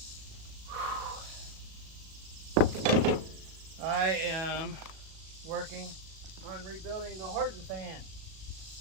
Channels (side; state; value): left; late; 37 ms